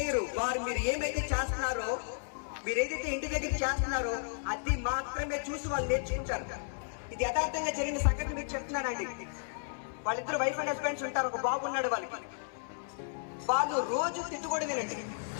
వారు మీరు ఏమైతే చేస్తున్నారో, మీరు ఏదైతే ఇంటి దగ్గర చేస్తున్నారో అది మాత్రమే చూసి వాళ్ళు నేర్చుకుంటారు. ఇది యథార్థంగా జరిగిన సంఘటన మీకు చెప్తున్నానండి. వాళ్ళిద్దరు వైఫ్ అండ్ హస్బెండ్స్ ఉంటారు. ఒక బాబు ఉన్నాడు వాళ్ళకి. వాళ్ళు రోజు తిట్టుకోవడం వినండి.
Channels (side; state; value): right; silent; 56 dB below the other